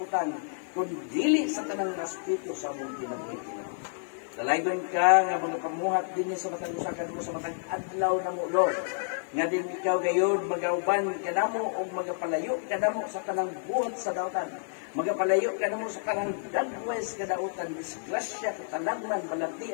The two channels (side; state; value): right; silent; digital silence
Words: kun dili sa tanang aspeto sa among kinabuhi. Dalaygon ka nga mga pamuhat din sa matang usakan mo sa matang adlaw na mo, Lord. Nga din ikaw gayon magauban kanamo o magapalayo kanamo sa kanang buhat sa dautan. Magapalayo kanamo sa kanang dagwes kadautan, disgrasya, katalagman,